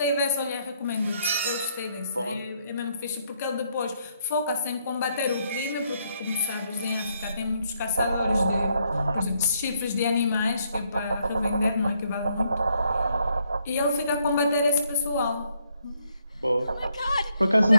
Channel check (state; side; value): inverted; both; correlation -0.73